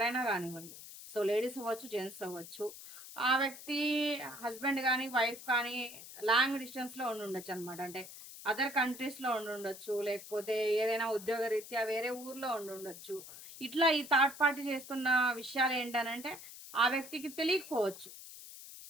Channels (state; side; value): noise; left; hiss, 14 dB below the sound